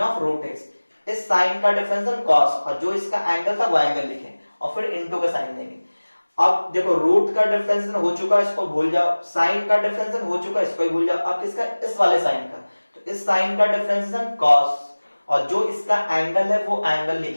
root x, इस साइन का डिफरेंशिएशन कॉस, और जो इसका एंगल था वो एंगल लिखें, और फिर इनटू का साइन देंगे। अब देखो रूट का डिफरेंशिएशन हो चुका, इसको भूल जाओ, साइन का डिफरेंशिएशन हो चुका, इसको भी भूल जाओ, अब किसका, इस वाले साइन का, तो इस साइन का डिफरेंशिएशन कॉस, और जो इसका एंगल है वो एंगल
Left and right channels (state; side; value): inverted; both; correlation -1.00